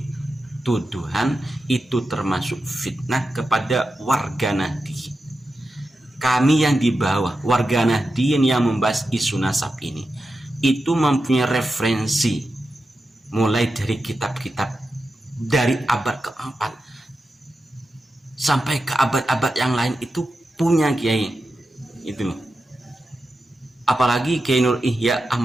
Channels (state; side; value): normal; both; correlation 0.90